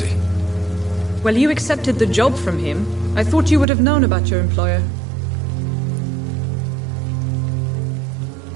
Well, you accepted the job from him. I thought you would have known about your employer.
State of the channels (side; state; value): left; drops out; at 3.7 s